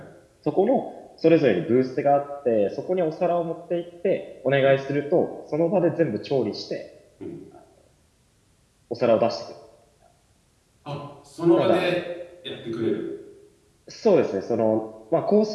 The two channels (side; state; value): both; identical; correlation 1.00